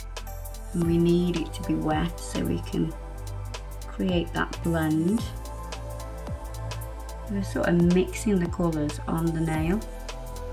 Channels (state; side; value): identical; both; correlation 1.00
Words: And we need it to be wet so we can create that blend. We're sort of mixing the colours on the nail.